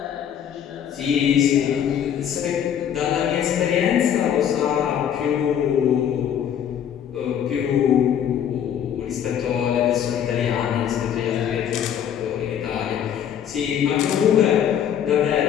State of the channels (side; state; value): right; quieter; 9.2 dB